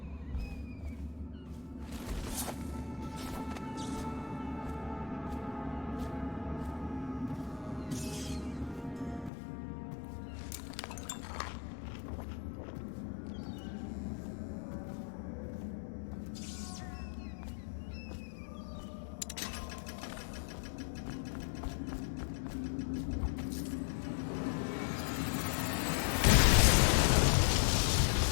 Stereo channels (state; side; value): drops out; right; at 9.3 s